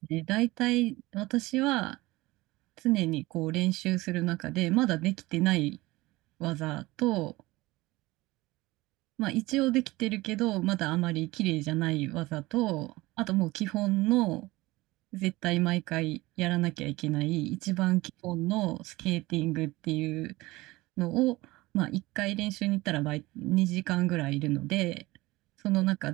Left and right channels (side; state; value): left; quieter; 20.1 dB